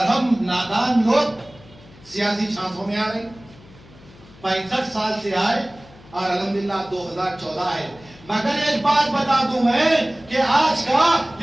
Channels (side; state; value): left; noise; hum, 23 dB below the sound